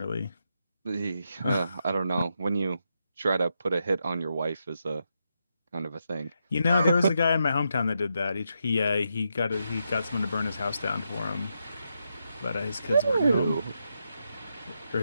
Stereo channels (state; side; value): inverted; both; correlation -0.83